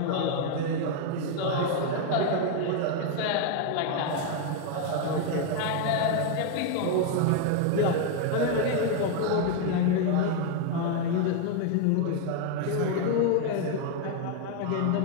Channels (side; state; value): both; different; correlation 0.00